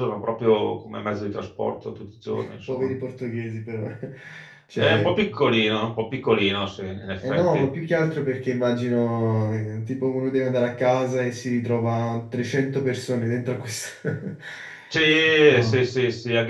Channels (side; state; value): both; identical; correlation 1.00